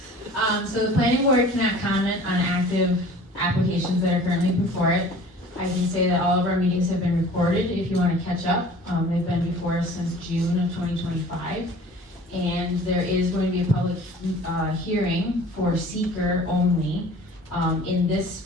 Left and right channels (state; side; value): normal; both; correlation 0.46